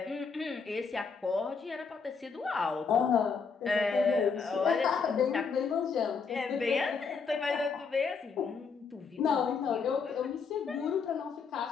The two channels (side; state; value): right; quieter; 5.4 dB